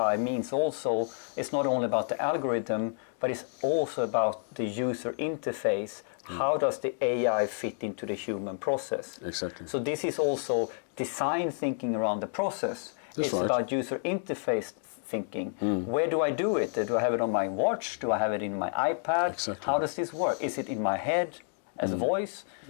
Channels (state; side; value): silent; right; digital silence